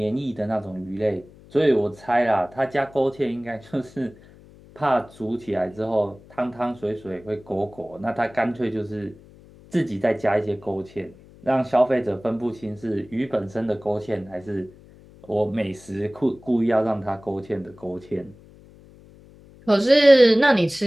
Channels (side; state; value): left; noise; hum, 23 dB below the sound